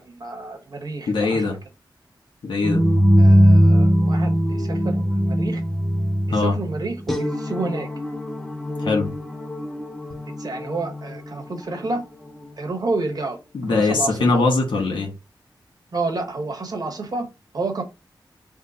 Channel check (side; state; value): both; normal; correlation 0.89